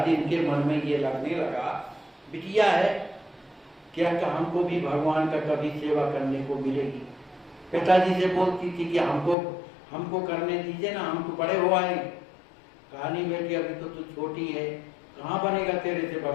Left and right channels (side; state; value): right; drops out; at 9.3 s